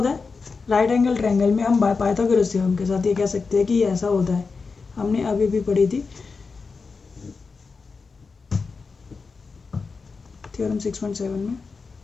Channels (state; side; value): quieter; right; 4.6 dB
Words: है, राइट एंगल ट्रायंगल में हम बाय पाइथागोरस थ्योरम के साथ ये कह सकते हैं कि ये ऐसा होता है। हमने अभी भी पढ़ी थी थ्योरम 6.7 में